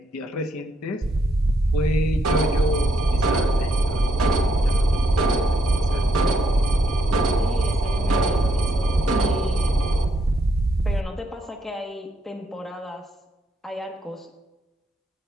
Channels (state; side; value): normal; both; correlation 0.76